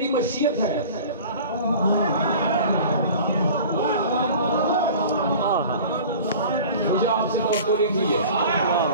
मशीयत है। मुझे आपसे तो नहीं है,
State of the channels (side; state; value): both; inverted; correlation -0.42